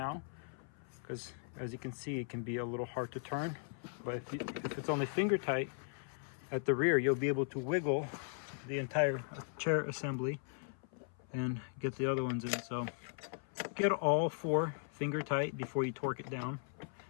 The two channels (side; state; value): right; silent; 52 dB below the other